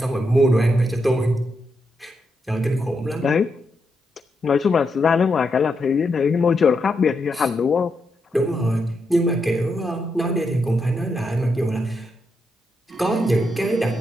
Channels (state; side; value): normal; both; correlation 0.82